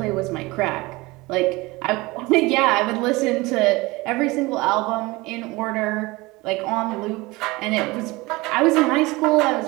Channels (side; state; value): left; quieter; 22.3 dB